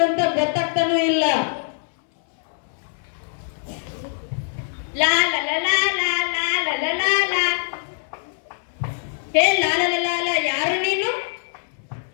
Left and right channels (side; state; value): right; silent; 61 dB below the other